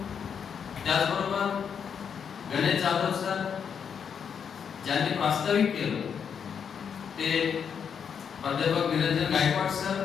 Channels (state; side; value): quieter; right; 7.2 dB